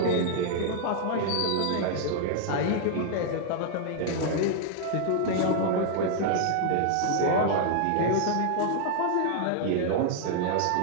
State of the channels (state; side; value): different; both; correlation -0.01